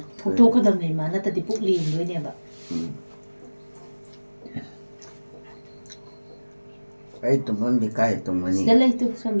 토토 그다음에 만났다 디 북리 뭐냐 봐 cái tụi mình đi cái tụi mình đi 스텔레이트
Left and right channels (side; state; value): both; inverted; correlation -1.00